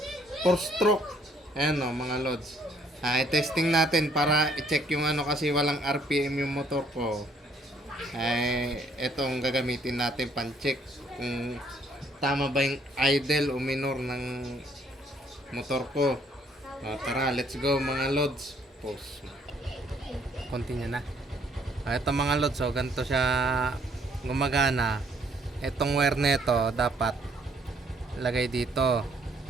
4-stroke. Ayan o, mga Lods. I-testing natin para i-check yung ano kasi walang RPM yung motor ko. Etong gagamitin natin pan-check kung tama ba yung idle o minor ng motor ko. Tara, let's go mga Lods. Pause. Continue na. Ito mga Lods, so ganito siya gumagana. Itong wire nito dapat lagay dito.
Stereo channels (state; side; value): normal; both; correlation 0.65